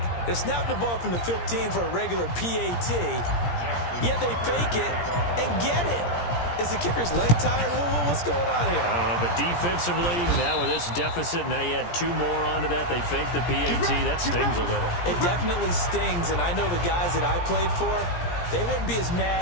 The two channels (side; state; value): right; late; 17 ms